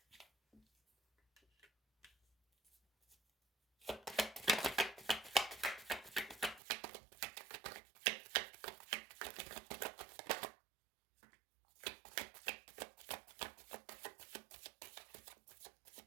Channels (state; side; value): drops out; left; at 6.6 s